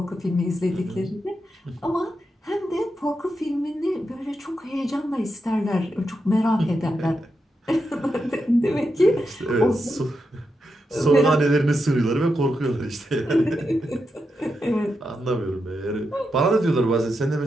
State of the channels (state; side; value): normal; both; correlation 0.86